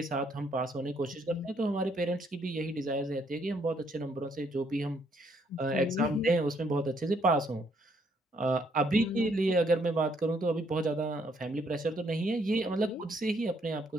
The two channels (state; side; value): normal; both; correlation 0.69